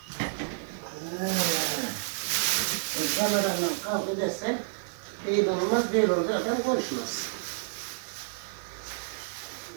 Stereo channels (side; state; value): left; silent; digital silence